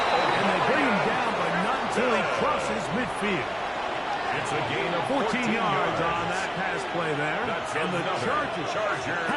And they bring him down, but not until he crosses midfield. It's a gain of 14 yards on that pass play there. And the Chargers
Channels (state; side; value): identical; both; correlation 1.00